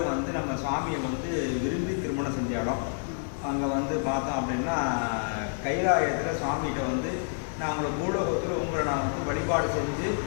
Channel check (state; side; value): silent; right; digital silence